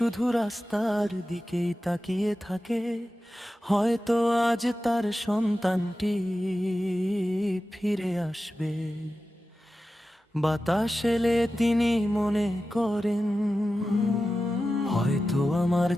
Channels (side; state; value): both; normal; correlation 0.93